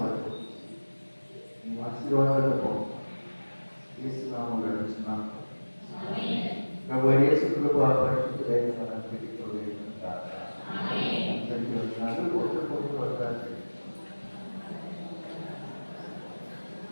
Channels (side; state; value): both; inverted; correlation -1.00